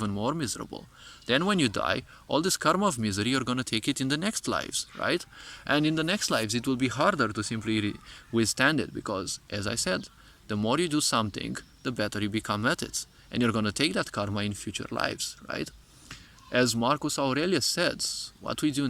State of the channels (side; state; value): both; identical; correlation 1.00